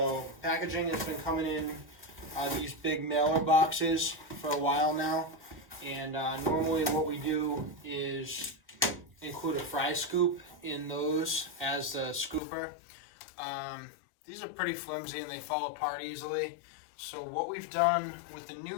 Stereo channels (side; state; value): right; drops out; at 12.4 s